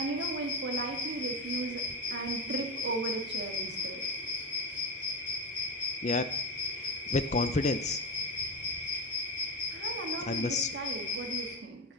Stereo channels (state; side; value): normal; both; correlation 0.17